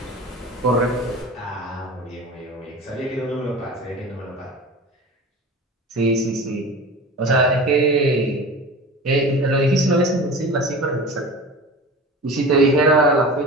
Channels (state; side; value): normal; both; correlation 0.35